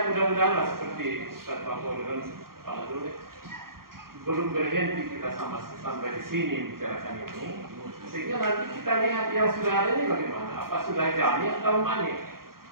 mudah-mudahan seperti Ustaz Mahmud dan Pak Dule belum berhenti kita sampai di sini bicarakan ini, sehingga nanti kita lihat yang sudah ada ini bagaimana, apa sudah jami atau manik.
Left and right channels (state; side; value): late; left; 0.92 ms